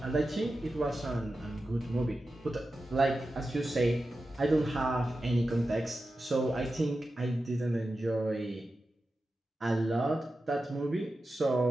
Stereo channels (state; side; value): normal; both; correlation 0.92